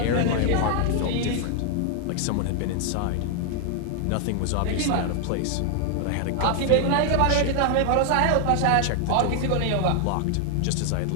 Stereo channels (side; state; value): both; different; correlation 0.00